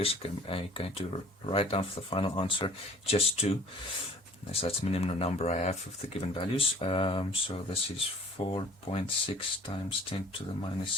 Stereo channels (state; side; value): normal; both; correlation 0.49